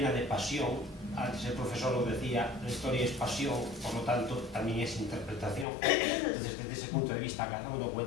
de pasión. Antes el profesor lo decía, la historia es pasión, por lo tanto también es interpretación. Entonces, desde ese punto de vista, cada uno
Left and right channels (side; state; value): right; drops out; at 5.7 s